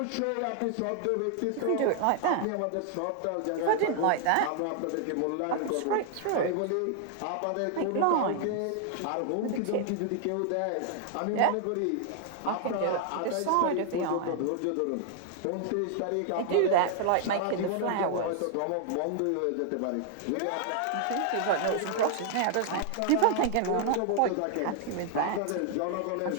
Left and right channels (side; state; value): both; different; correlation 0.00